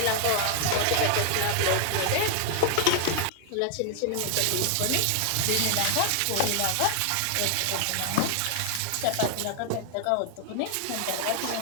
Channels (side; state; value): both; different; correlation 0.00